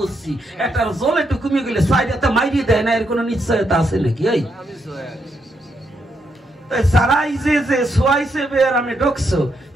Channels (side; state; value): both; normal; correlation 0.79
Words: একটার জলে একটু কমিয়ে গেলে সাইডে মাইরিয়ে দেয় না, এর কোনো নিশ্চয়তা আছে নাকি? ওই সারাই যে সোয়াইছে বের আমি ঢুকছো,